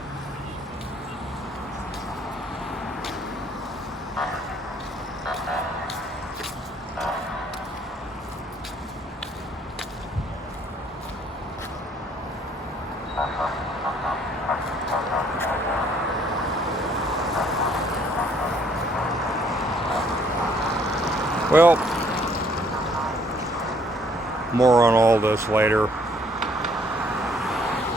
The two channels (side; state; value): both; normal; correlation 0.63